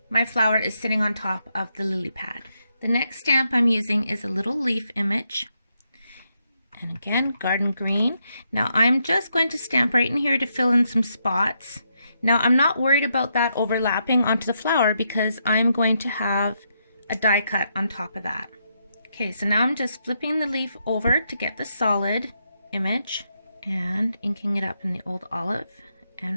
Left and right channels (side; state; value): both; inverted; correlation -0.80